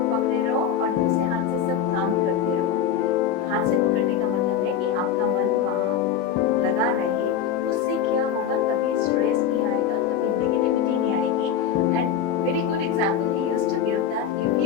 पकड़े रहो और दूसरे हाथ से सब काम करते रहो। हाथ से पकड़ने का मतलब है कि आपका मन वहाँ लगा रहे, उससे क्या होगा, कभी स्ट्रेस नहीं आएगा, कभी नेगेटिविटी नहीं आएगी। And very good example he used to give that if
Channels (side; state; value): right; quieter; 8.2 dB